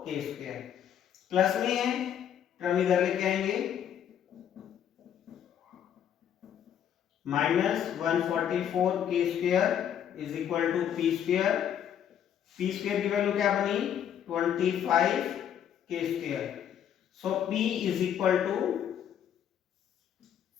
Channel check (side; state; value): right; quieter; 9.4 dB